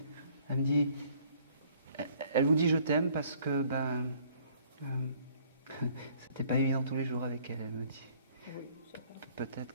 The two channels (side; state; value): both; inverted; correlation -0.59